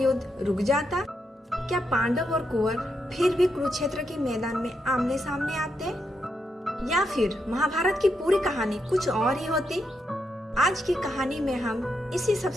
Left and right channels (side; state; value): both; normal; correlation 0.82